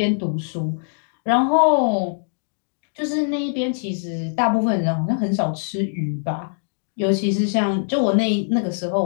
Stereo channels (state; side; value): silent; right; digital silence